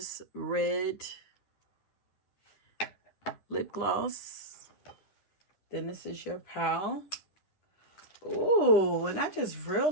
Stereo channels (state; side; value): late; right; 10 ms